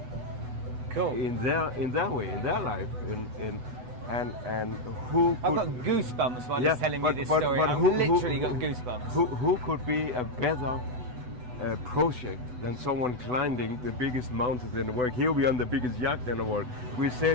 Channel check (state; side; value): late; left; 8.0 ms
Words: Cool. In their way, in their life, and who I've got goosebumps while he's telling me this story. I've literally got goosebumps. Who could be a better project than someone climbing the biggest mountain in the world? He'll be on the biggest yacht in the world. We're